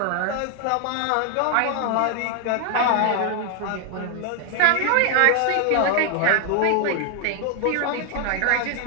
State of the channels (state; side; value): different; both; correlation 0.00